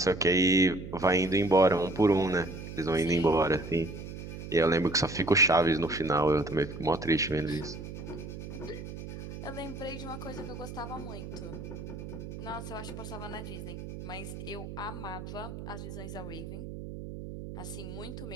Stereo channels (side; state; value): right; noise; hum, 10 dB below the sound